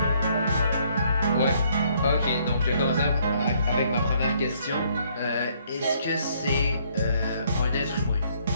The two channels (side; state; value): both; inverted; correlation -0.66